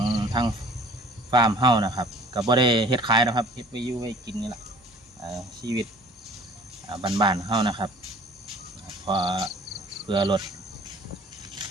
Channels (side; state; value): both; normal; correlation 0.49